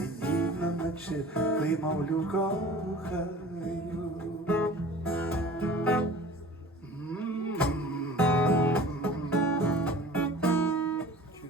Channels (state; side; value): normal; both; correlation 0.43